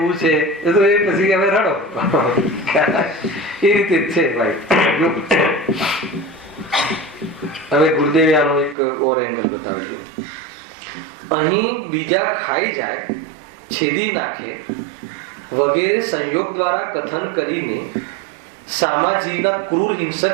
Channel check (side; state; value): left; drops out; at 8.8 s